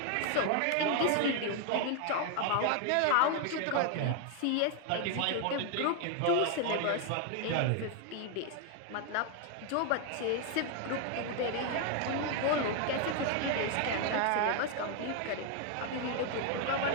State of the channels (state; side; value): different; both; correlation 0.00